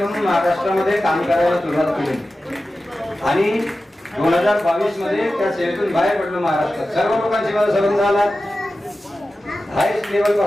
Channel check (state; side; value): normal; both; correlation 0.94